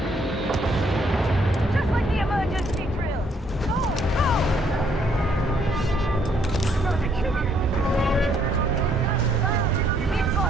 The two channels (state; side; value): normal; both; correlation 0.68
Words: Just like the emergency drill! Go! Go! We're gonna be killing it! We've